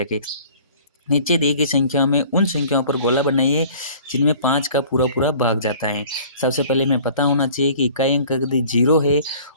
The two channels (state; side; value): inverted; both; correlation -0.49